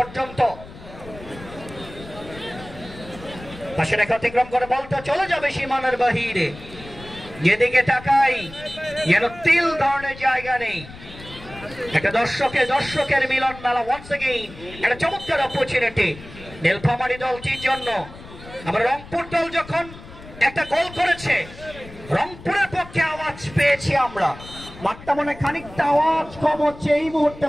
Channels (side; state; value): left; noise; rumble, 17 dB below the sound